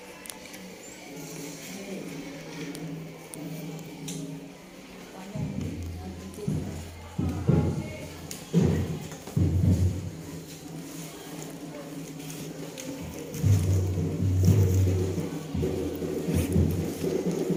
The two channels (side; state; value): both; identical; correlation 1.00